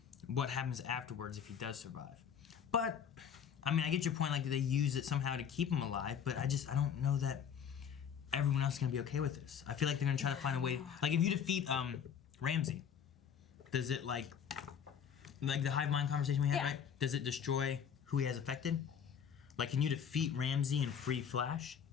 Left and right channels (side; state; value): right; quieter; 7.8 dB